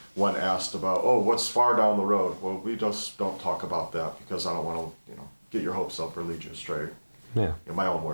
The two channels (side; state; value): both; inverted; correlation -1.00